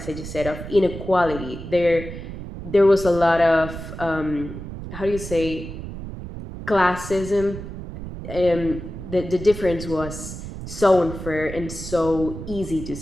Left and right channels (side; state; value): right; noise; rumble, 10 dB below the sound